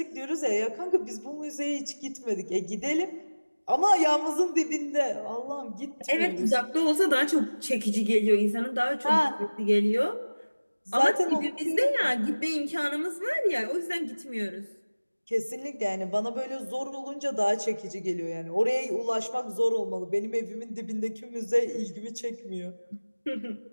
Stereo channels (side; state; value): both; inverted; correlation -1.00